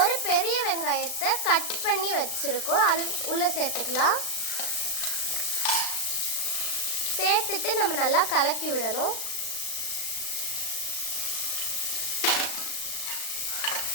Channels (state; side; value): late; right; 36 ms